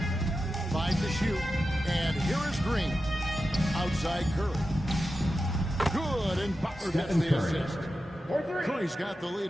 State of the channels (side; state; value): both; normal; correlation 0.91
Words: 5 to shoot. And here is Green. Outside Curry. Good, and Butler gets the assist. Curry's got the lead